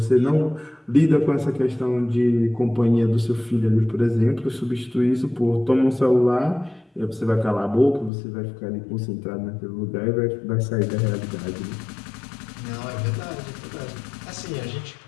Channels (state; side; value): drops out; right; at 8.1 s